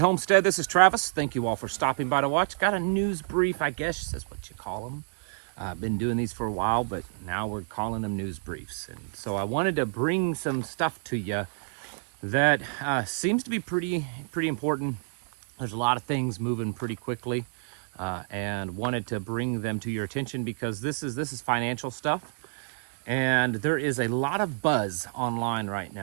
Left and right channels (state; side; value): silent; left; digital silence